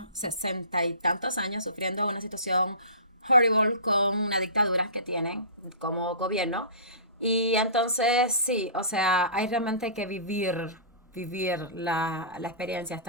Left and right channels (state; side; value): inverted; both; correlation -0.36